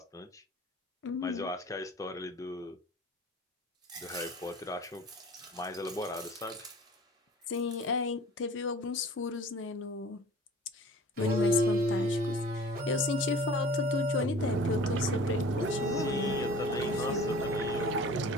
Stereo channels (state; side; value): normal; both; correlation 0.44